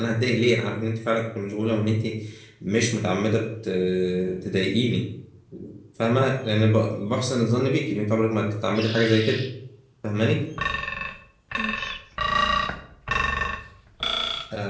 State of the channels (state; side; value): identical; both; correlation 1.00